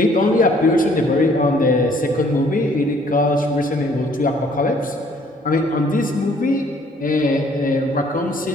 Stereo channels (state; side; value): normal; both; correlation 0.61